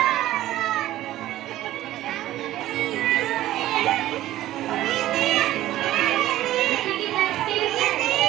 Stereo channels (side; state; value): left; quieter; 14.5 dB